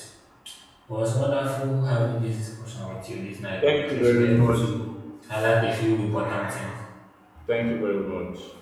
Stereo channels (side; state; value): both; identical; correlation 1.00